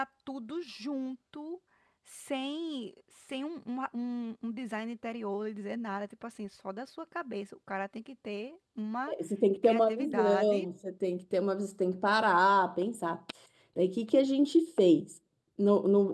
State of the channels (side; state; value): both; identical; correlation 1.00